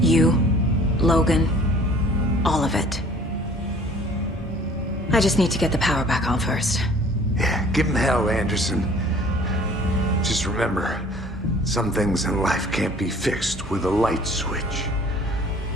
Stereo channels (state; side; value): normal; both; correlation 0.51